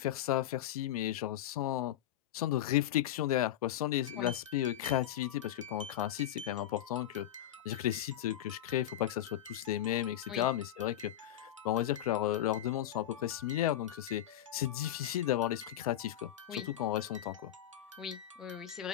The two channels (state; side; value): quieter; right; 12.4 dB